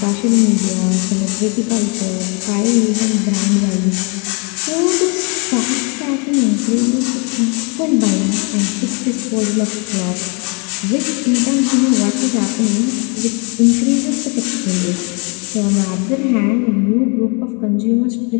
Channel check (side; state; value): right; quieter; 34.0 dB